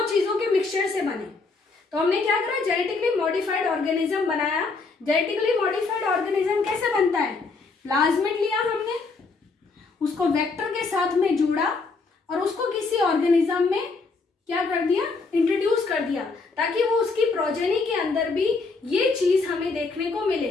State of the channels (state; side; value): quieter; right; 4.1 dB